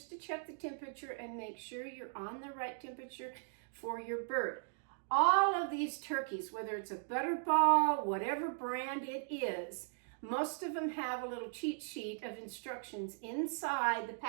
to check the temperature and make sure you're on the right temperature for your bird. all of these turkeys, whether it's a Butterball, whatever brand it is, most of them have a little cheat sheet of instructions inside the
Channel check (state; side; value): silent; left; digital silence